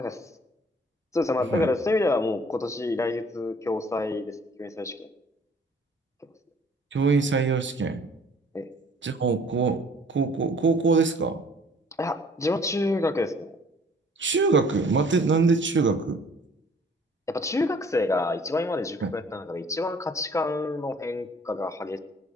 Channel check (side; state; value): both; normal; correlation 0.55